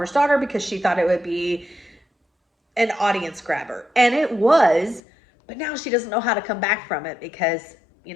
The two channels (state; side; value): drops out; right; at 5.0 s